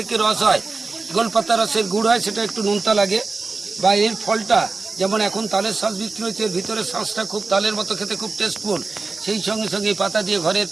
রস হয়, গোলপাতা রসের গুড় হয়, সেটা একটু নোনতা লাগে। বা এর ফলটা যেমন এখন তালের শ্বাস বিক্রি হচ্ছে, এর ভিতরে শ্বাসটা খুব তালের মতো খেতে খুব টেস্টফুল। সেই সঙ্গে সঙ্গে এই পাতা দিয়ে ঘরের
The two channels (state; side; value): quieter; left; 3.9 dB